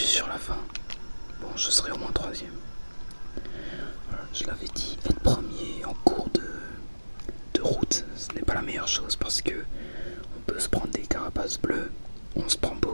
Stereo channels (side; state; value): both; inverted; correlation -1.00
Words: sur la fin. Bon, je serai au moins 3ème. Je l'avais dit, être premier en cours de route, ce n'est pas la meilleure chose parce que on peut se prendre des carapaces bleues, on se prend